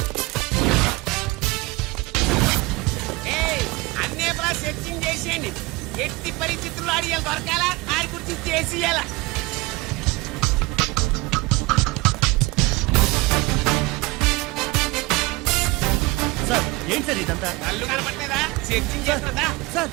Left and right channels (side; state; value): left; quieter; 22.9 dB